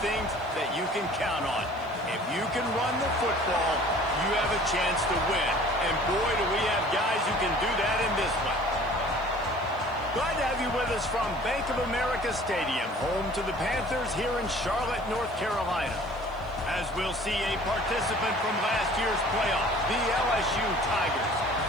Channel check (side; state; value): left; noise; hiss, 30 dB below the sound